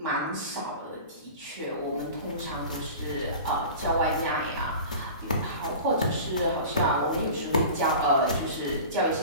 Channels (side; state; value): both; inverted; correlation -0.37